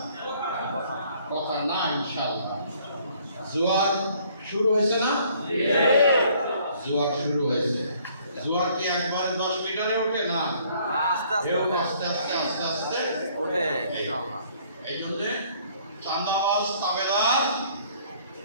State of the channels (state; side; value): inverted; both; correlation -0.60